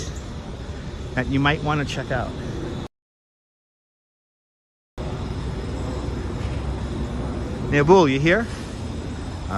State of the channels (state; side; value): identical; both; correlation 1.00